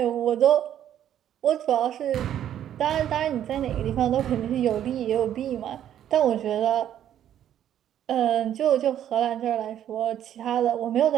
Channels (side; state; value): left; quieter; 10.7 dB